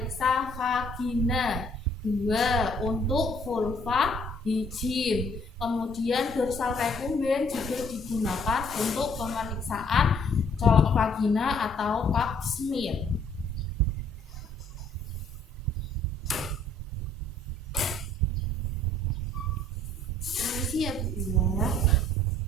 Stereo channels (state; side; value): normal; both; correlation 0.61